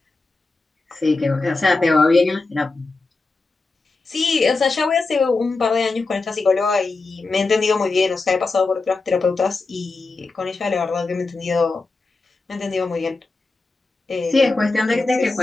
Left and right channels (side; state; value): right; quieter; 3.6 dB